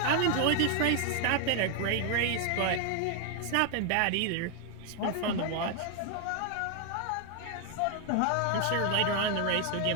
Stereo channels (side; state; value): both; different; correlation 0.00